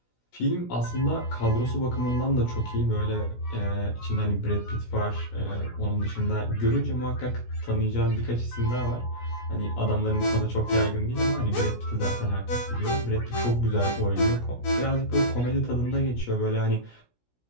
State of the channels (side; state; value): right; late; 17 ms